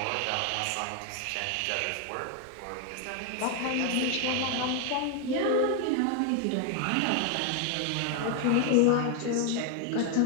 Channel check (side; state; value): both; different; correlation 0.01